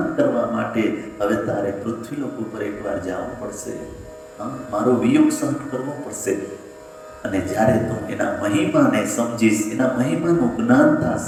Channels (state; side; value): identical; both; correlation 1.00